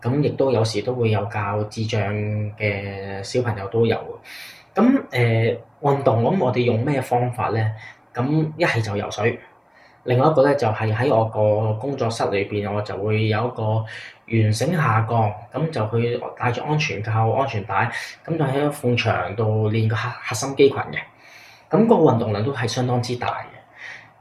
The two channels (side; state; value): both; identical; correlation 1.00